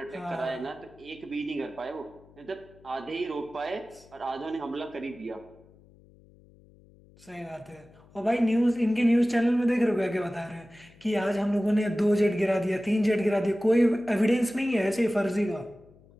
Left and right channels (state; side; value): noise; left; hum, 26 dB below the sound